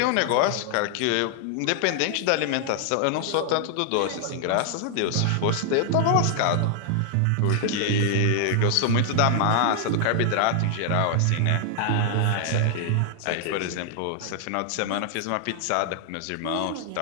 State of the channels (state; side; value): different; both; correlation 0.00